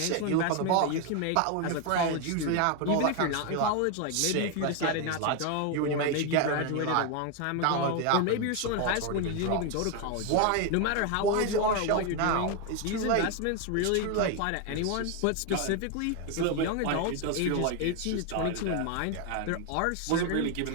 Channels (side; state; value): both; different; correlation 0.01